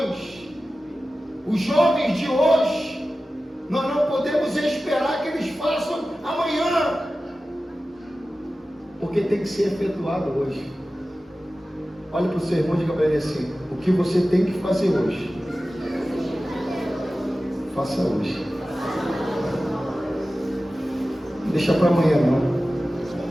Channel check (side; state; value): both; normal; correlation 0.95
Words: Os jovens de hoje, nós não podemos esperar que eles façam amanhã. Porque tem que ser efetuado hoje. Olha para o seu irmão e diga para ele assim: o que você tem que fazer hoje, faça hoje. Não deixa para amanhã não.